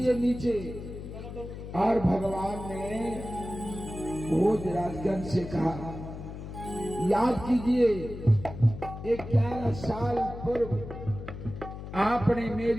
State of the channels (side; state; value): left; noise; hum, 10 dB below the sound